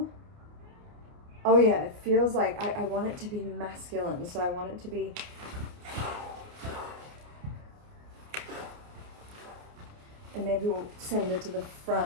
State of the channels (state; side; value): late; left; 29 ms